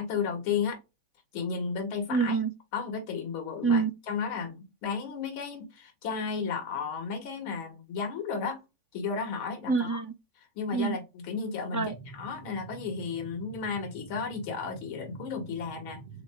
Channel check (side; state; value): right; late; 3.5 ms